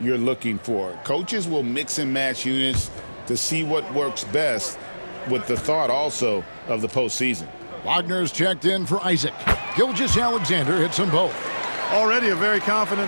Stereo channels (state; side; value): inverted; both; correlation -1.00